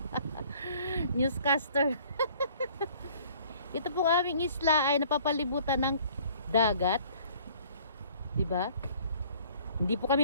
Newscaster. Ito po aming isla ay napapalibutan ng dagat. Diba? Hindi po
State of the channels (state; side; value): inverted; both; correlation -0.55